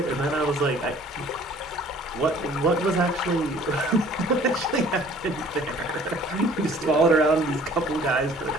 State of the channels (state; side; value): normal; both; correlation 0.53